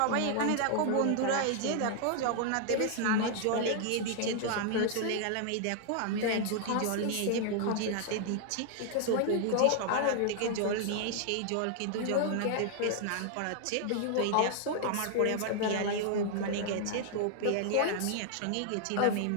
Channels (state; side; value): different; both; correlation 0.00